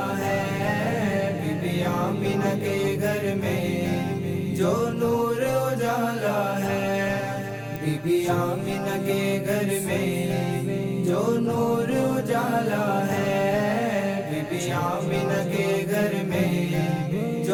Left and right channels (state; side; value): identical; both; correlation 1.00